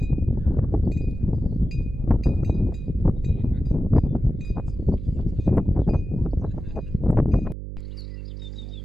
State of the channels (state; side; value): noise; right; hum, 9 dB below the sound